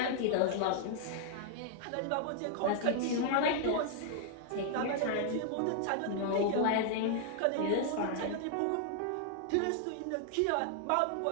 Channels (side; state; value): both; different; correlation -0.01